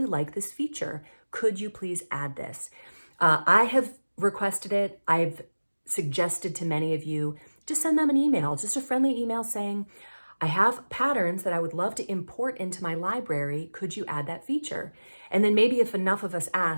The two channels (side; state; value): both; inverted; correlation -1.00